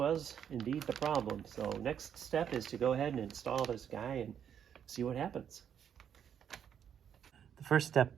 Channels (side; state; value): left; quieter; 8.6 dB